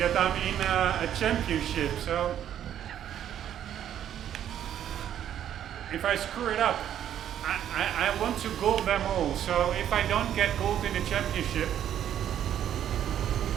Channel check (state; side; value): quieter; left; 10.4 dB